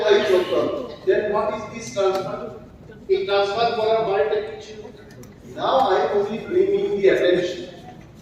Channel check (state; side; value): identical; both; correlation 1.00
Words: চলতে হবে। Then what is this transfer? এই ট্রান্সফার করার মানেটা কি ছিল? Now I am only bringing the attention.